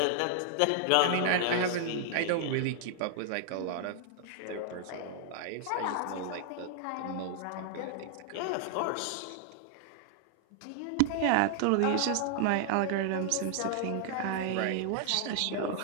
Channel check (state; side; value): different; both; correlation 0.00